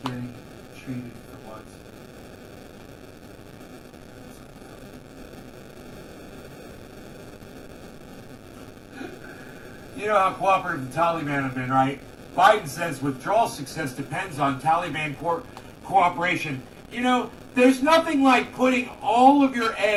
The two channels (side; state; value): both; identical; correlation 1.00